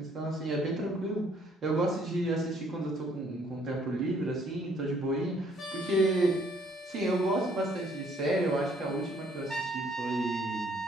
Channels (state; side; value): normal; both; correlation 0.63